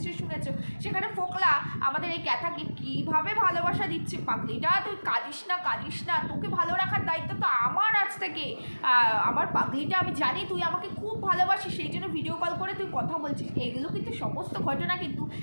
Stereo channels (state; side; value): inverted; both; correlation -1.00